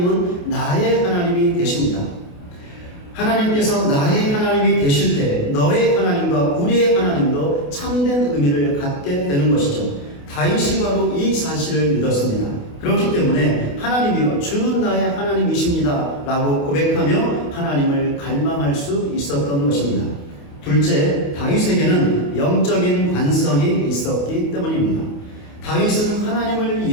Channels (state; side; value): late; right; 28 ms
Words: 나의 하나님이 되십니다. 하나님께서 나의 하나님이 되실 때 너의 하나님과 우리의 하나님도 참된 의미를 갖게 되는 것이죠. 다윗이 바로 이 사실을 믿었습니다. 그렇기 때문에 하나님이여 주는 나의 하나님이십니다 라고 고백하며 하나님을 갈망할 수 있었던 것입니다. 둘째, 다윗에게는 영적인 관성이 있었기 때문입니다. 다윗은 하나님을